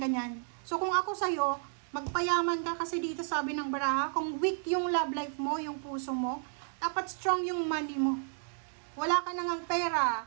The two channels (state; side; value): silent; left; digital silence